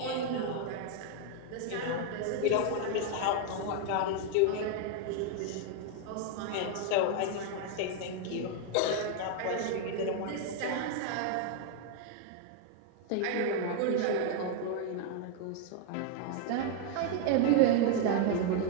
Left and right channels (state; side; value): different; both; correlation 0.00